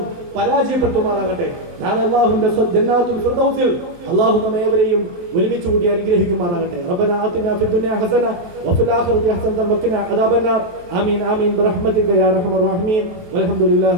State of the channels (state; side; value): late; left; 23 ms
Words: പരാജയപ്പെടുത്തുമാറാകട്ടെ. നാളെ അല്ലാഹുവിന്റെ ജന്നാത്തുൽ ഫിർദൗസിൽ അല്ലാഹു നമ്മേവരെയും ഒരുമിച്ച് കൂടി അനുഗ്രഹിക്കുമാറാകട്ടെ. റബ്ബനാ ആതിനാ ഫിദ് ദുനിയാ ഹസന വഫിൽ ആഖിറതി ഹസനതൻ വഖിനാ അദാബന്നാർ. ആമീൻ ആമീൻ ബിറഹ്മതിക യാ അർഹമർ റഹീമീൻ.